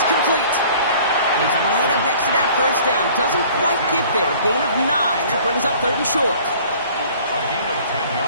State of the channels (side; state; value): both; inverted; correlation -0.51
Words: complete. He's right up next to that first down. Doesn't quite get there. Gain of 9. That brings up 3rd and short. A gain of 10